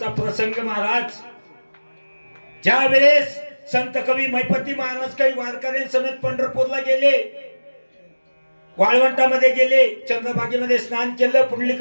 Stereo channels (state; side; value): inverted; both; correlation -1.00